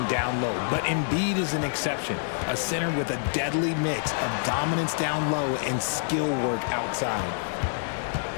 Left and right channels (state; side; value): silent; right; digital silence